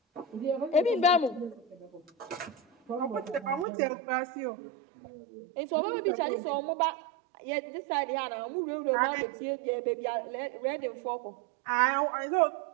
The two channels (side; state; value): left; drops out; at 3.7 s